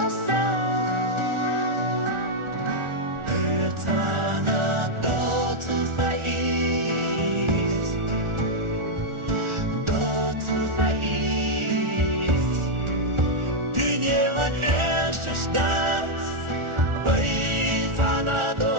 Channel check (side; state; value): left; late; 1.4 ms